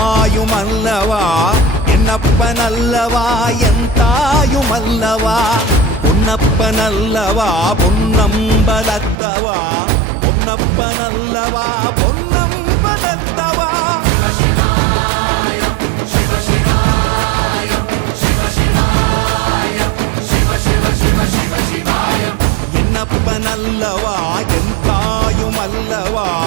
என்னப்பனல்லவா என் தாயுமல்லவா, பொன்னப்பனல்லவா பொன்னம்பலத்தவா, பொன்னப்பனல்லவா பொன்னம்பலத்தவா. என்னப்பனல்லவா என் தாயுமல்லவா,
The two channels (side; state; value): left; drops out; at 9.2 s